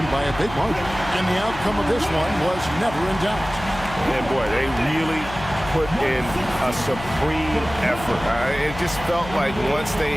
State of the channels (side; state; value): left; noise; hum, 12 dB below the sound